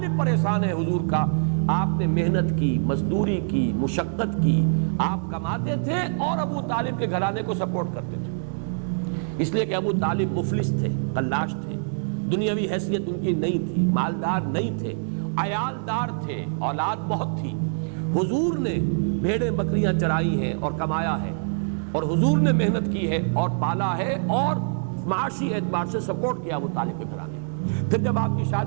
پر احسان ہے حضور کا۔ آپ نے محنت کی، مزدوری کی، مشقت کی، آپ کماتے تھے اور ابو طالب کے گھرانے کو سپورٹ کرتے تھے، اس لیے کہ ابو طالب مفلس تھے، قلاش تھے، دنیاوی حیثیت ان کی نہیں تھی، مالدار نہیں تھے، عیالدار تھے، اولاد بہت تھی۔ حضور نے بھیڑیں بکریاں چرائی ہیں اور کمایا ہے، اور حضور نے محنت کی ہے اور پالا ہے اور معاشی اعتبار سے سپورٹ کیا ابو طالب کے گھرانے۔ پھر جب آپ کی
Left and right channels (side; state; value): left; silent; digital silence